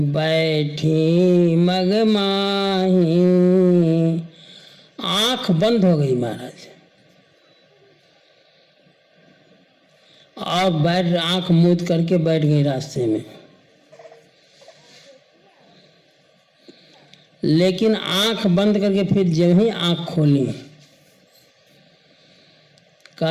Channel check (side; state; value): both; identical; correlation 1.00